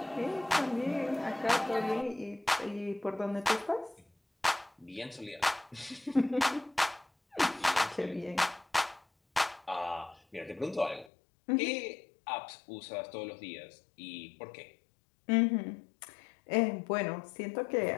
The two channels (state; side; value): drops out; right; at 11.1 s